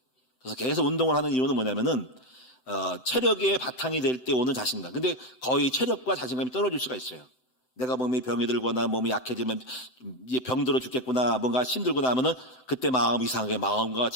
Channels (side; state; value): right; late; 7.8 ms